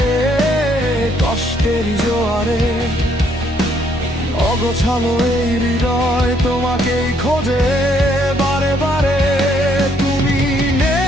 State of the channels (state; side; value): normal; both; correlation 0.69